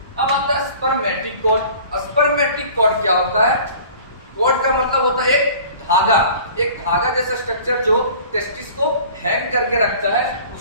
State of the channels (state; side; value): inverted; both; correlation -0.46